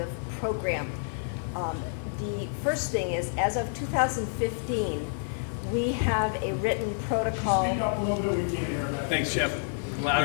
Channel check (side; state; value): right; silent; 59 dB below the other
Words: program. The first thing is, as of 2015, we have a written protocol. Speak up a little bit, we can't hear that. Thanks, Jeff.